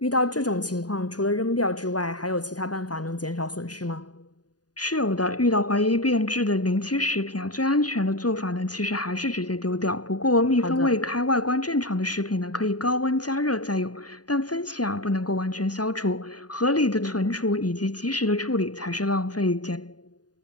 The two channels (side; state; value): right; late; 0.69 ms